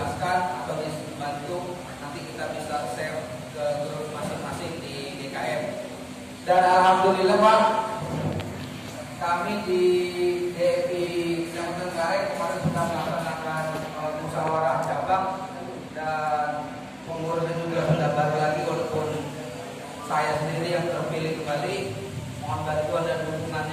atau dibantu, nanti kita bisa share ke grup masing-masing di DKM. Dan alhamdulillah Pak, kami di DPI Kecamatan Kareng kemarin sudah melaksanakan musyawarah cabang, dan pengurusnya juga sudah baru lagi, walaupun saya sendiri yang terpilih kembali. Mohon bantuan dan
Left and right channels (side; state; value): both; identical; correlation 1.00